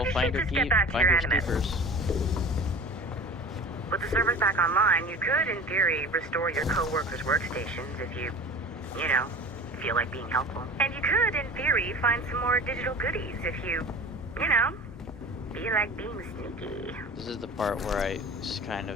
you find should your just key, get back to find your your Animus. sneakers. With the servers back online, you could, in theory, restore your co-workers' workstations if you know, feel like being helpful. And you could, in theory, find some more digital goodies if you know, feel like being sneaky. This is the part where I just kind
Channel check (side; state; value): both; normal; correlation 0.38